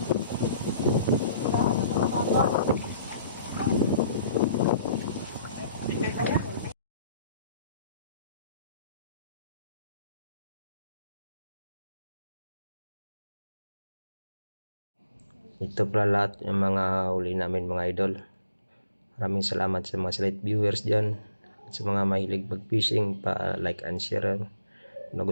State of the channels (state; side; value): inverted; both; correlation -0.66